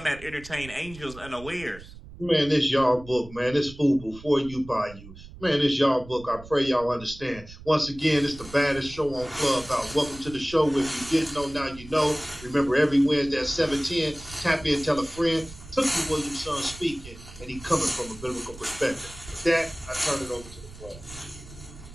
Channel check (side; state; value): right; noise; rumble, 17 dB below the sound